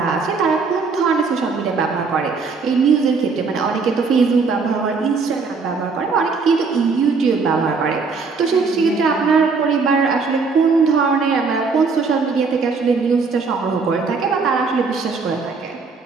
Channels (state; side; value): quieter; left; 4.7 dB